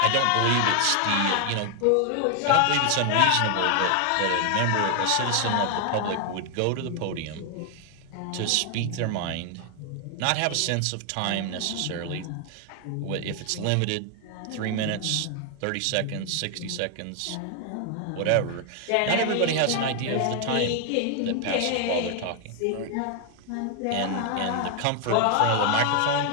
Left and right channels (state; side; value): different; both; correlation 0.00